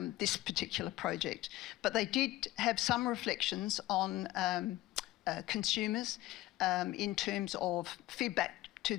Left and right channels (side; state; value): right; quieter; 16.8 dB